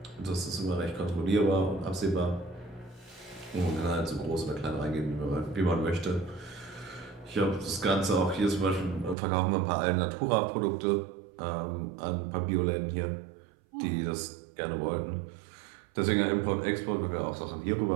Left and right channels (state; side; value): drops out; left; at 9.2 s